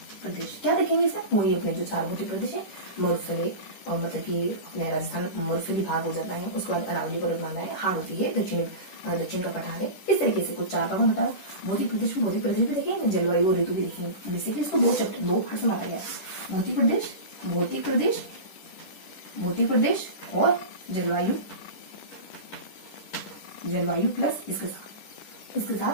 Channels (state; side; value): late; right; 10 ms